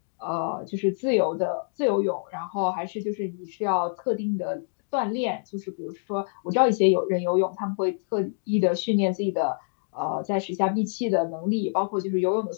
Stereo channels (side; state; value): right; silent; digital silence